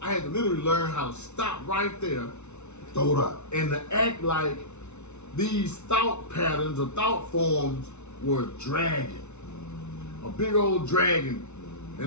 I had to literally learn how to stop right there, throw it out, and to act like these thought patterns or thought forms were a dragon, a big old dragon,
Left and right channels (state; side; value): late; right; 0.82 ms